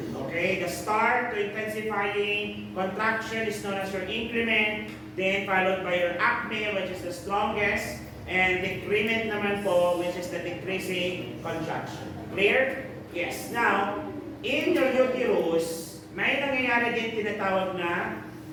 Okay, the start to intensifying contraction is known as your increment, then followed by your acme, which is the strongest, and decrement naman po, which is the decreasing contraction. Clear? Yes. Now, in your uterus, may nangyayari din tinatawag na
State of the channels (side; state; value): both; identical; correlation 1.00